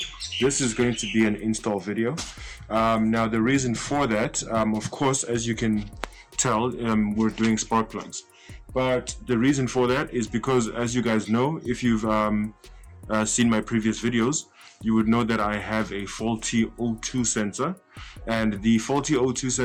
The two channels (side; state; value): both; identical; correlation 1.00